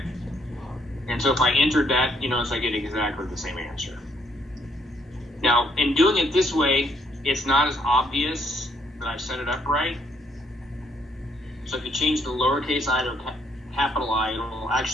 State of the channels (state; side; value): normal; both; correlation 0.69